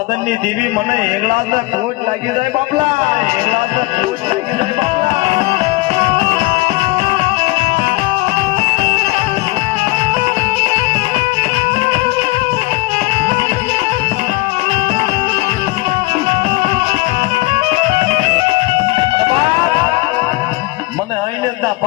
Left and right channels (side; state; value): right; quieter; 21.4 dB